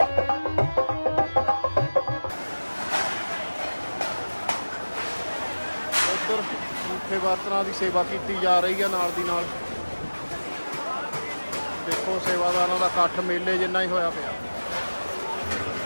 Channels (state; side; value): inverted; both; correlation -1.00